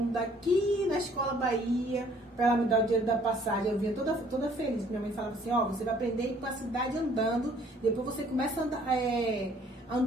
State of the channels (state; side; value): normal; both; correlation 0.59